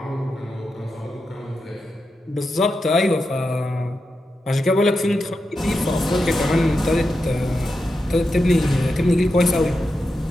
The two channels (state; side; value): normal; both; correlation 0.88